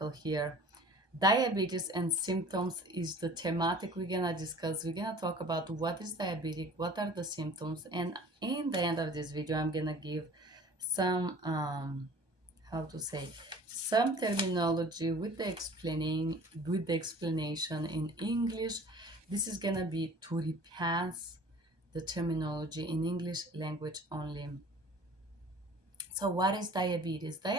here. Diabetes and symptoms is the thematic we're gonna discuss. We're gonna talk about what is diabetic, what are the symptoms, and in the end of this video I'm gonna give some how to say some terminology with the explanation in English. This is gonna be to repass the terminology in English language only. So what is diabetes?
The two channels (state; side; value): late; left; 1.2 ms